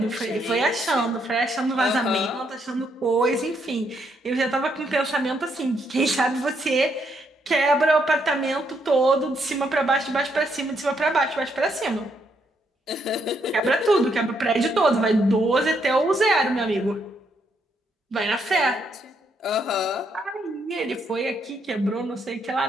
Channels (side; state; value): both; normal; correlation 0.75